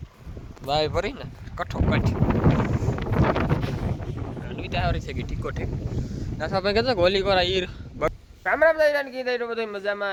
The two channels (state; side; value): identical; both; correlation 1.00